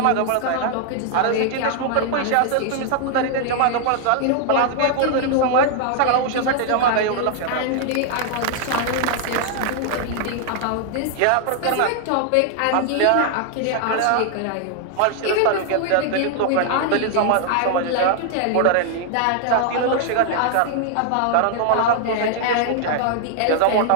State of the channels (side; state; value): both; different; correlation 0.00